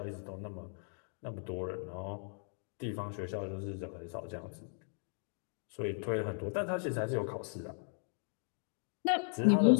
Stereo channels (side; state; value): right; silent; 53 dB below the other